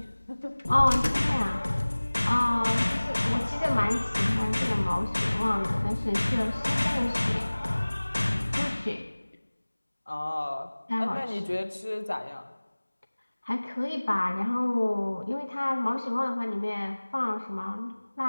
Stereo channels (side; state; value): both; inverted; correlation -1.00